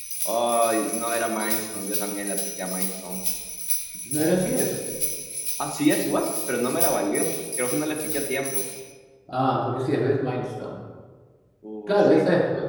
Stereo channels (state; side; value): identical; both; correlation 1.00